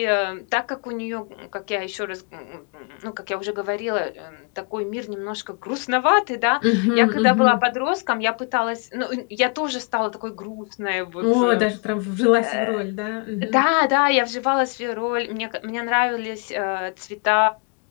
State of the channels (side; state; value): right; quieter; 36.5 dB